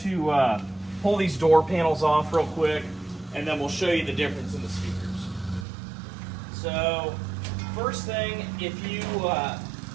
pull these door panels off real quick, and then we'll show you the difference in the speakers. So first thing, if you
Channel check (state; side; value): drops out; left; at 5.7 s